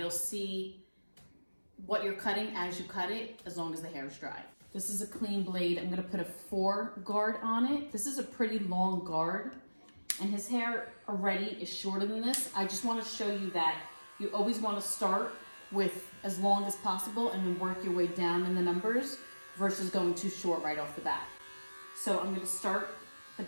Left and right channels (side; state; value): both; inverted; correlation -1.00